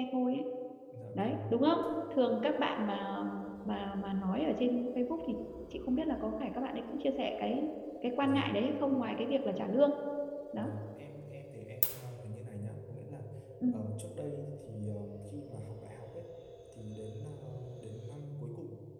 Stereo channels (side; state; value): both; identical; correlation 1.00